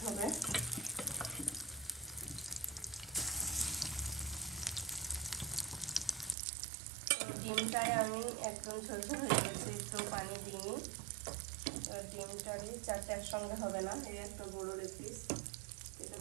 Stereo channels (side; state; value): left; drops out; at 6.4 s